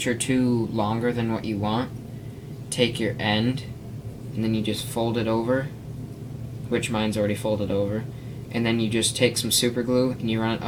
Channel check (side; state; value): both; identical; correlation 1.00